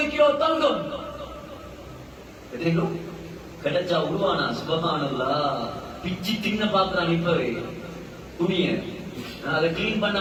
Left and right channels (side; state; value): both; identical; correlation 1.00